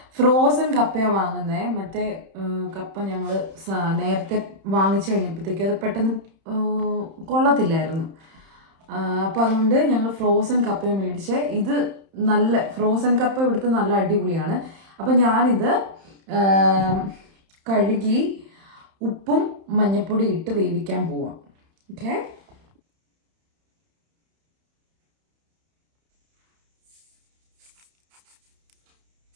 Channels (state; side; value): late; left; 31 ms